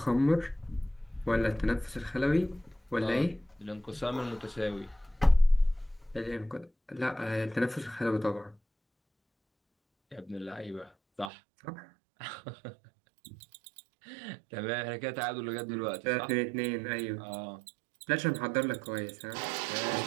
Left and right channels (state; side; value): drops out; left; at 11.3 s